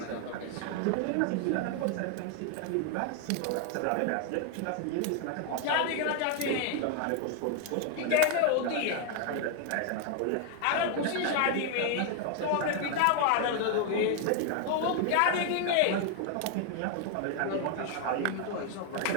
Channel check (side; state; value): both; different; correlation 0.00